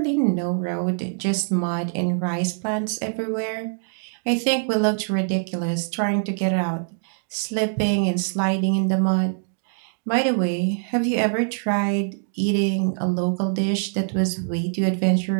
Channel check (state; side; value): silent; left; 62 dB below the other